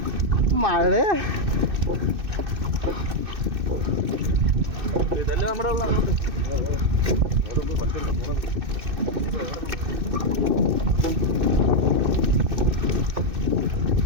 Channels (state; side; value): late; left; 2.6 ms